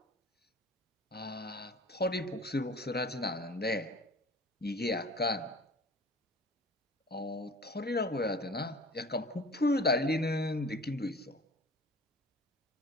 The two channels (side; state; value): both; normal; correlation 0.43